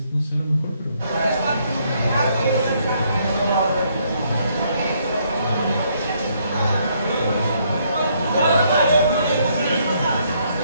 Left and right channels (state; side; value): inverted; both; correlation -0.70